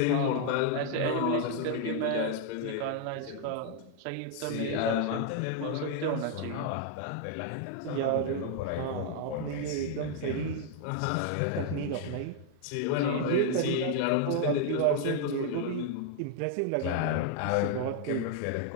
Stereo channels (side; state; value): both; different; correlation 0.00